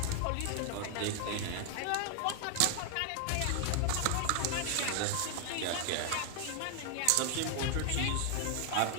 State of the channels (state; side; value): different; both; correlation 0.00